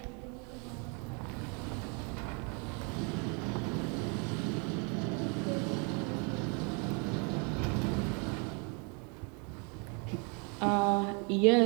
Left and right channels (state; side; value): quieter; left; 34.9 dB